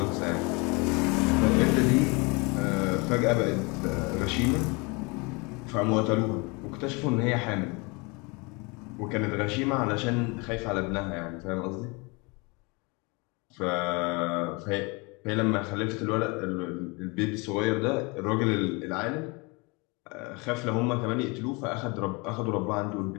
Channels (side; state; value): right; quieter; 28.5 dB